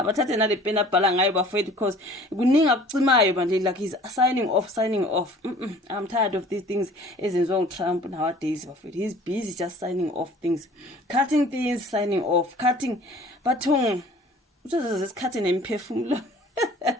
nale pen abhala ngayo bafethu because kuninga kucimayo manje like he's signing off. I'm tired of these things ezenziwa uTrump nowadays bafethu. He's busy just signing off things, cutting things, signing off, cutting bathung uzoze isikhathi nemphefumulo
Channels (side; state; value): both; normal; correlation 0.49